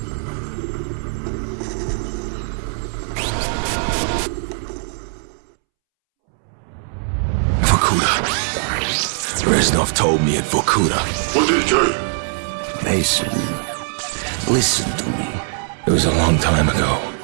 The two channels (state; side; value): silent; left; 66 dB below the other